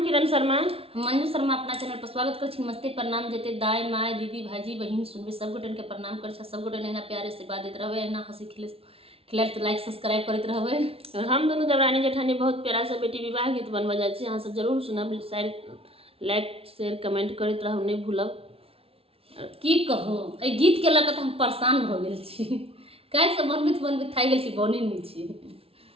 किरण शर्मा, हम मंजू शर्मा अपना चैनल पर स्वागत कर छी। नमस्ते प्रणाम जेते दाई माय दीदी भाजी बहन सुनबे सब गोटन के प्रणाम कर छ। सब गोटन एना प्यारे से बात देत रहबे, एना हंसी खिलाल तो लाइक सब्सक्राइब करत रहबे। और हम दोनों देवरानी जेठानी बहुत प्यारा सा बेटी विवाह गीत बनवा जाय छी। अहाँ सब जरूर सुनब, लाइक शेयर कमेंट करत रहब, नहीं भूलब। की कहो ए गीत के लक हम परेशान भ गेल छी। काहे से बनबित थाई गेल छी, बने नहीं छी।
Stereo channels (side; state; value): left; late; 0.27 ms